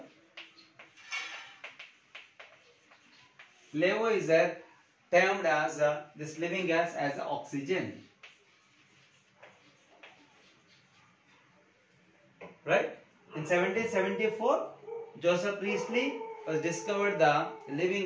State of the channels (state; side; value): identical; both; correlation 1.00